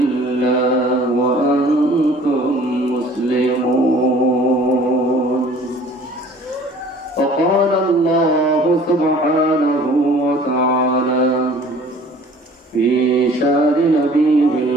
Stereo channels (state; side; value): normal; both; correlation 0.50